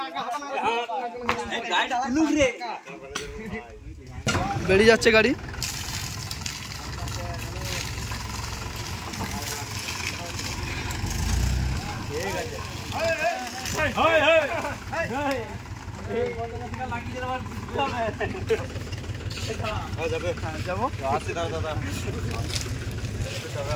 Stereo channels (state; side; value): identical; both; correlation 1.00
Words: বেরিয়ে যাচ্ছে গাড়ি। যাবো